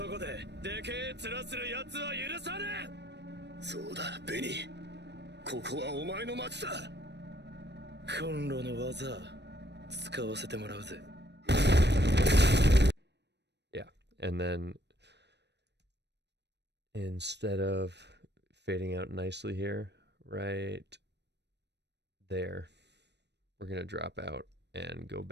こででけえ面する奴は許さねえ。そうだ、ベニー。ここはお前の町だ。コンロの技使わせてもらうぜ。Yeah, and then instead of fading out nicely here, right there, we're going to drop out and go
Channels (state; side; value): late; left; 0.50 ms